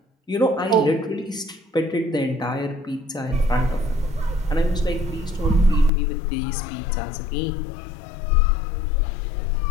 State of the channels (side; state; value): right; drops out; at 5.9 s